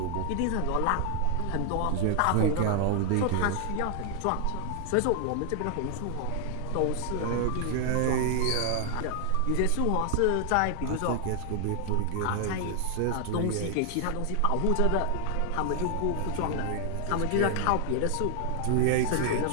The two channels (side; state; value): both; different; correlation 0.00